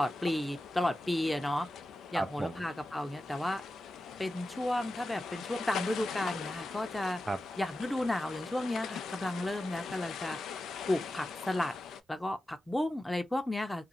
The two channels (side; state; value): both; normal; correlation 0.92